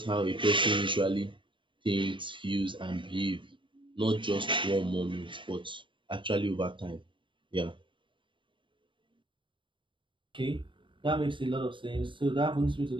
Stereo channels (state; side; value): late; left; 0.24 ms